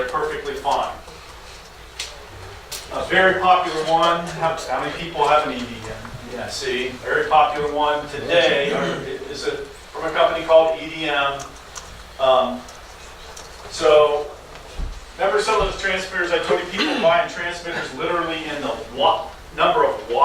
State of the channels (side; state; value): both; identical; correlation 1.00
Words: perfectly fine. A very popular one, how many people have an EDM? Yeah, see, very popular one today is from a company called EDM. So, remember some of those transmitters I told you people buying transmitters literally in the number of